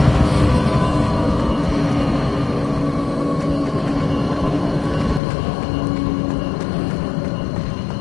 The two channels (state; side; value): drops out; right; at 5.2 s